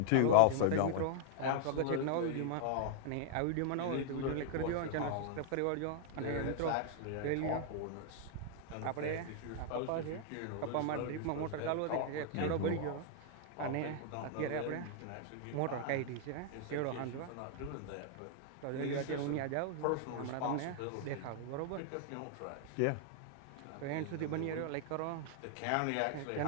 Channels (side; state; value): both; different; correlation 0.00